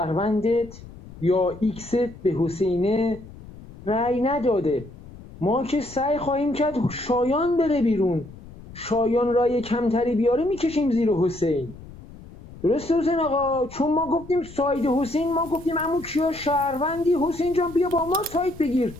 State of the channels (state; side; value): noise; left; rumble, 18 dB below the sound